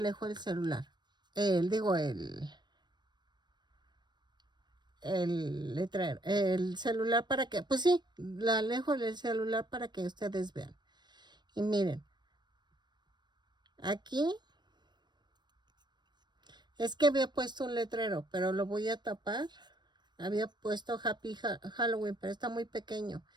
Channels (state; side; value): late; left; 0.21 ms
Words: el celular. El letrero, el celular para que, pues sí, la alejo del celular para que ustedes vean. Y miren, aquí es que había puesto un letrero, pero lo voy a tapar. Había puesto Happy Halloween, pero está muy pequeño.